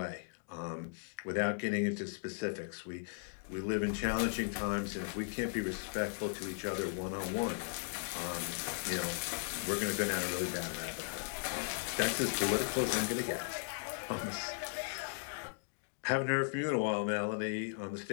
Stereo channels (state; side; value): silent; right; digital silence